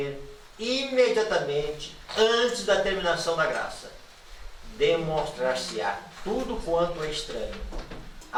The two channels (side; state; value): both; identical; correlation 1.00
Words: imediatamente antes da terminação da graça. Demonstrar-se-á tudo quanto é estranho.